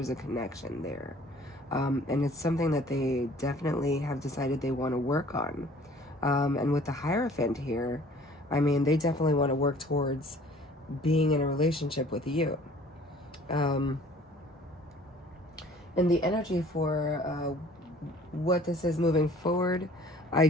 a connection there, and it's something that they definitely have decided they want to work on. And with the Hierophant here, I mean, they definitely want to work towards being in a relationship with you. And the energy for what this is moving forward, I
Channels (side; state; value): both; normal; correlation 0.52